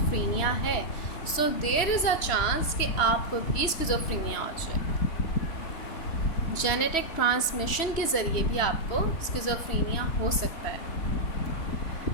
है, so there is a chance कि आपको भी स्किज़ोफ्रेनिया हो जाए. जेनेटिक ट्रांसमिशन के ज़रिए भी आपको स्किज़ोफ्रेनिया हो सकता है.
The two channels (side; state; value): right; late; 3.1 ms